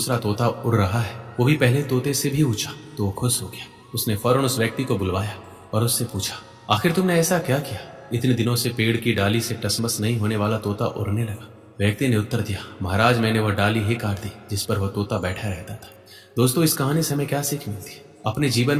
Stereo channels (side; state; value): both; identical; correlation 1.00